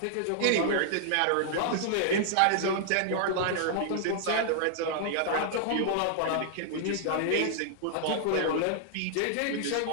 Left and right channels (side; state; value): both; different; correlation -0.01